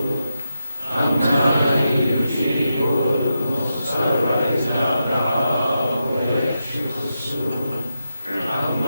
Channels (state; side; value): inverted; both; correlation -0.86